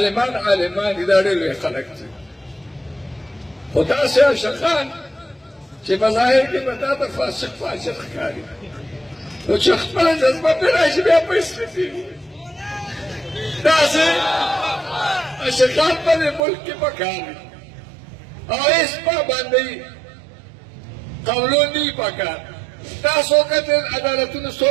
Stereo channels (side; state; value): left; drops out; at 16.4 s